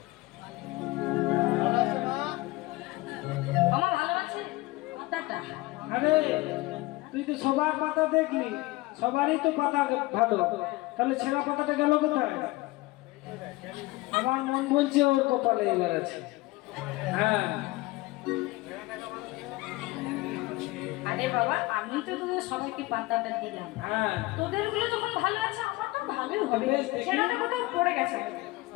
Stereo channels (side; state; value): right; quieter; 20.7 dB